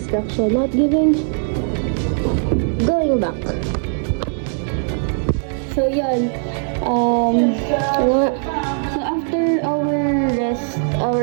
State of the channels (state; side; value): silent; left; 66 dB below the other